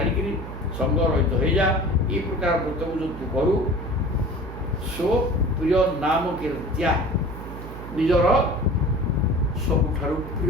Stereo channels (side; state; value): right; noise; hum, 11 dB below the sound